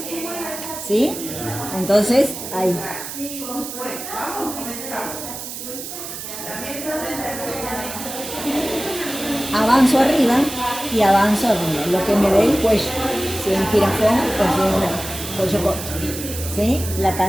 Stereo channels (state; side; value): noise; right; hiss, 9 dB below the sound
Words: ¿Sí? Entonces, ahí. Avanzo arriba y avanzo arriba, lo que me dé el cuello. Si es un jirafón o si es un cuello corto. ¿Sí? La